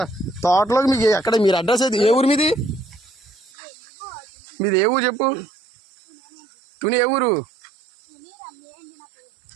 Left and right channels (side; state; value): left; drops out; at 3.5 s